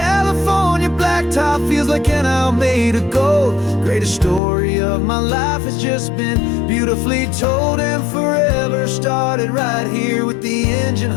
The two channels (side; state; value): right; drops out; at 4.4 s